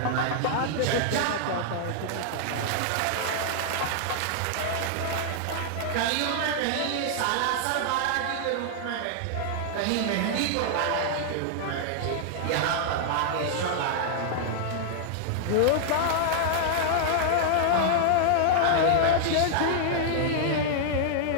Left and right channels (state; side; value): different; both; correlation -0.01